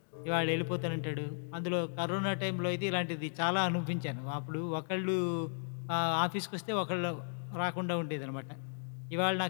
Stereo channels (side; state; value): right; silent; digital silence